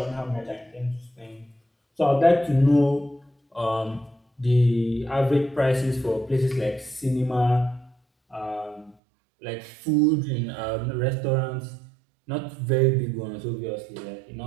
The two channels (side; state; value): left; drops out; at 9.0 s